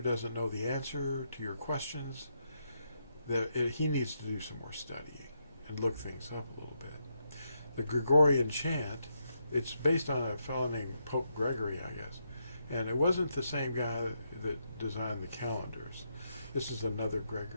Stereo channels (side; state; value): both; inverted; correlation -0.80